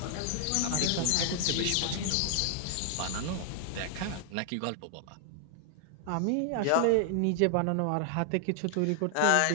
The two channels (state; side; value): different; both; correlation 0.00